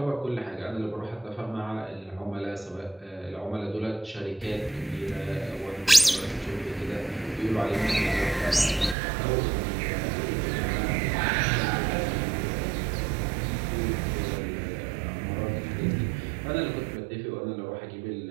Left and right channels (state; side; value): drops out; left; at 9.0 s